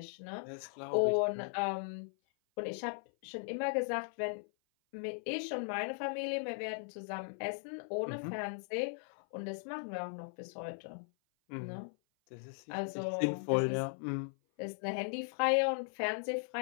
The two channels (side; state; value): right; silent; 52 dB below the other